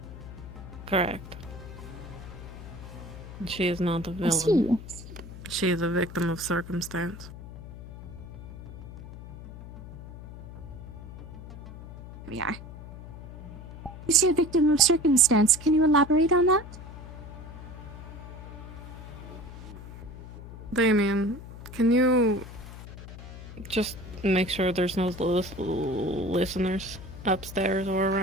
Correct. She is not a I villain. see. She is a victim of circumstance. We are. You say a victim of circumstance. Can you elaborate on that? Damien, can you just make sure there's no listeners upstairs or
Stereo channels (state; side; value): noise; left; hum, 13 dB below the sound